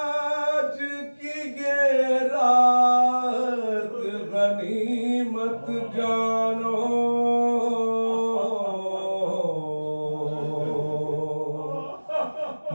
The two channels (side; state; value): both; inverted; correlation -1.00